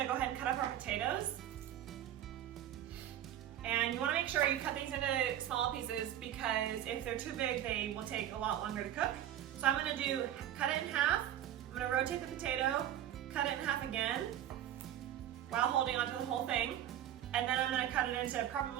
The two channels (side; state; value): left; quieter; 11.5 dB